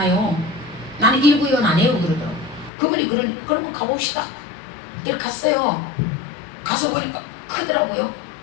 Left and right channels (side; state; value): right; drops out; at 2.7 s